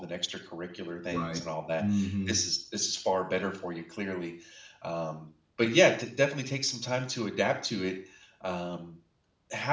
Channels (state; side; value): identical; both; correlation 1.00